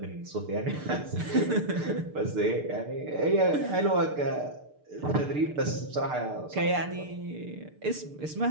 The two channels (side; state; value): left; late; 6.7 ms